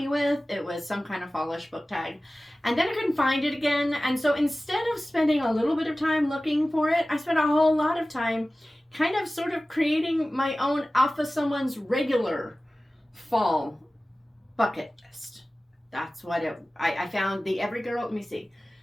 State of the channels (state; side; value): normal; both; correlation 0.97